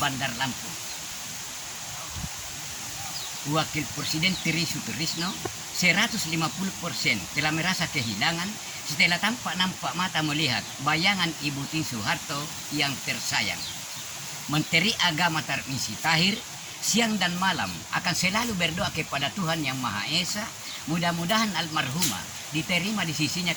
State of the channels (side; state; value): both; identical; correlation 1.00